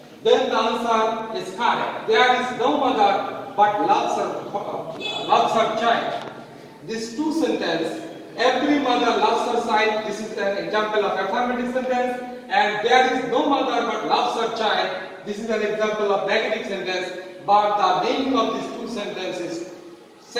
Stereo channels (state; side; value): identical; both; correlation 1.00